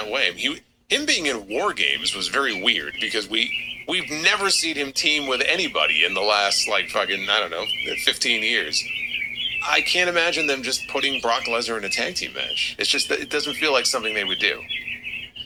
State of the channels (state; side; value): identical; both; correlation 1.00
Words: way? Him being in War Games was very weird because we've never seen him team with anybody in the last, like, fucking, I don't know, 15 years. I can't imagine them just putting Brock Lesnar in a tag team match. It's just that it doesn't feel like something they would do.